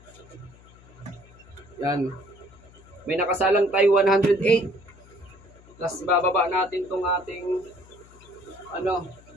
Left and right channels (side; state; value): left; noise; hum, 24 dB below the sound